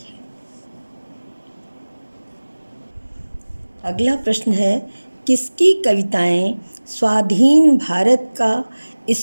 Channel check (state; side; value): inverted; both; correlation -1.00